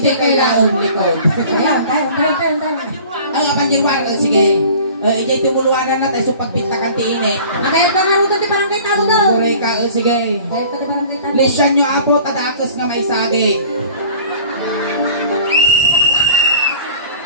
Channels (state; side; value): inverted; both; correlation -0.46